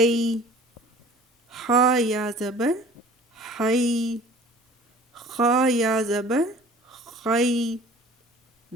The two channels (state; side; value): normal; both; correlation 0.48